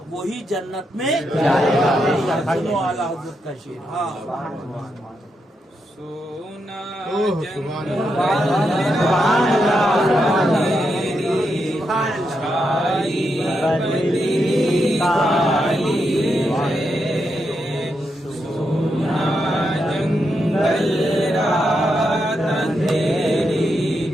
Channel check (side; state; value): both; normal; correlation 0.83